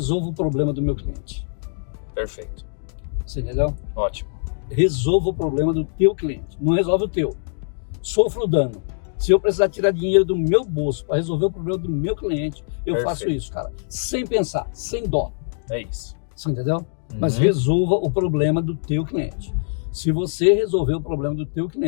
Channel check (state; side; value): silent; right; digital silence